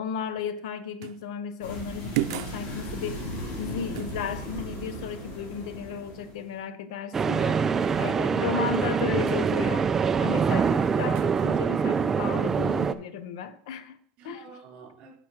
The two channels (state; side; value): quieter; left; 3.2 dB